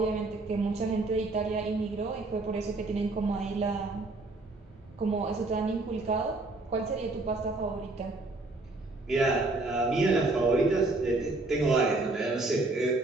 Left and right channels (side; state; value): left; quieter; 3.1 dB